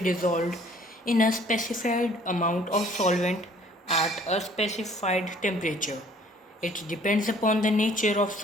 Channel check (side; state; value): both; normal; correlation 0.56